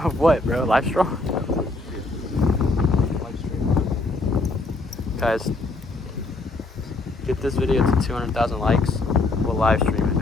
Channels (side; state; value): right; quieter; 3.1 dB